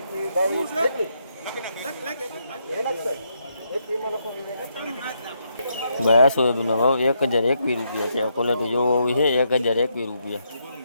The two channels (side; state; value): both; inverted; correlation -0.78